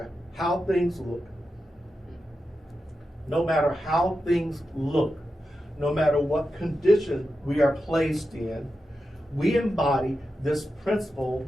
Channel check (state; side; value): normal; both; correlation 0.90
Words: how things look, no matter what condition we are placed in, we embody this principle,